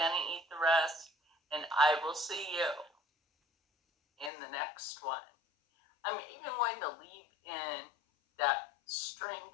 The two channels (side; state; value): right; drops out; at 4.3 s